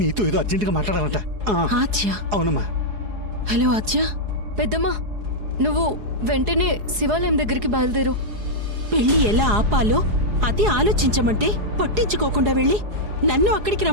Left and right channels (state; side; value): late; left; 4.8 ms